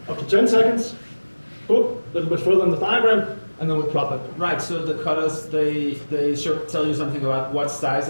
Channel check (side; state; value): both; inverted; correlation -1.00